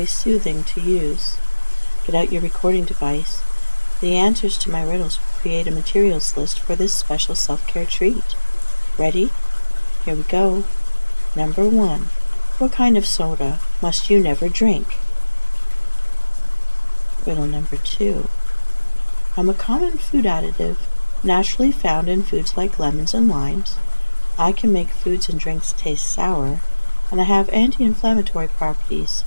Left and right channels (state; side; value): inverted; both; correlation -1.00